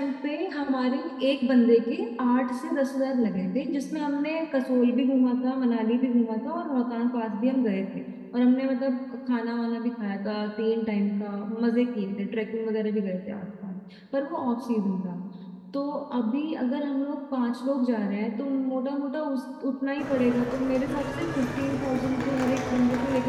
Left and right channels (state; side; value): identical; both; correlation 1.00